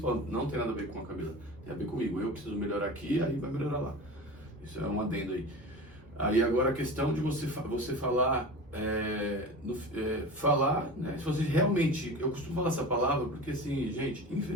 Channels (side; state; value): both; normal; correlation 0.32